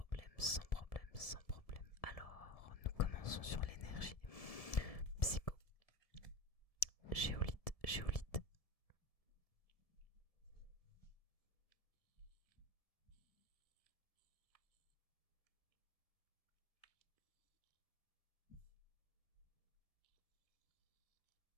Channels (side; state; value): right; late; 1.7 ms